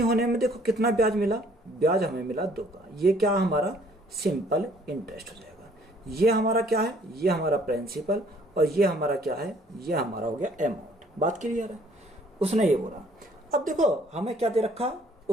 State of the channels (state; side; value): normal; both; correlation 0.60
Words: में देखो कितना ब्याज मिला, ब्याज हमें मिला 2 का। ये क्या हमारा सिंपल इंटरेस्ट हो जाएगा। ये हमारा क्या है, ये हमारा प्रिंसिपल, और ये हमारा क्या है, ये हमारा हो गया अमाउंट। बात क्लियर है? उसने ये बोला। अब देखो हमें क्या दे रखा,